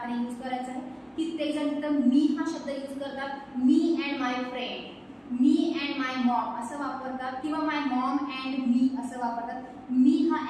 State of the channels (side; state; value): both; identical; correlation 1.00